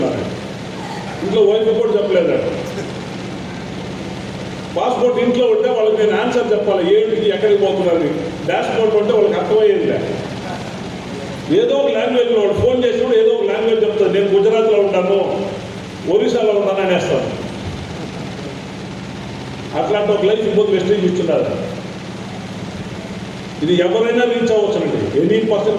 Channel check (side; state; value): both; identical; correlation 1.00